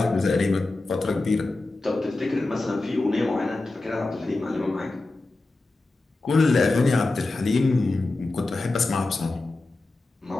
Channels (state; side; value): quieter; right; 3.1 dB